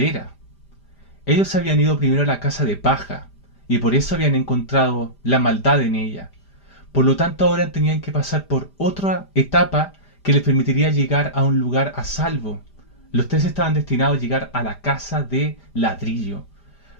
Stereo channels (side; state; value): right; late; 5.0 ms